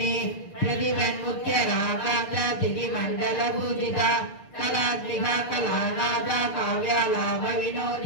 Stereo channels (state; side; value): late; right; 6.7 ms